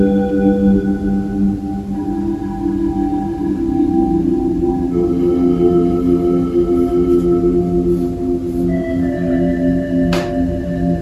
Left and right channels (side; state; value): both; identical; correlation 1.00